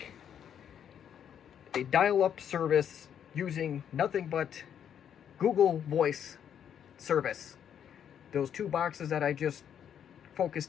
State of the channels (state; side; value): quieter; right; 8.9 dB